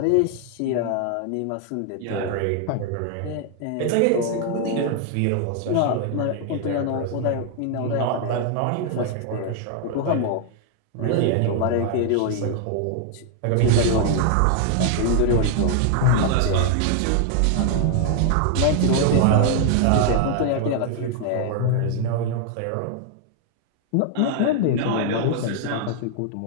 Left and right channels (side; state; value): both; different; correlation 0.00